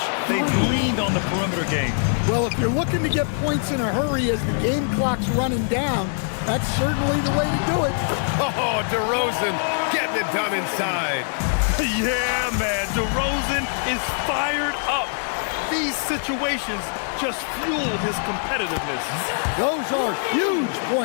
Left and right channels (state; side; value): silent; right; 63 dB below the other